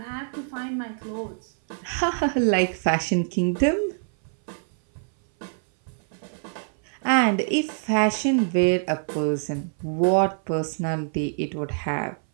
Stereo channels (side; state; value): left; silent; 58 dB below the other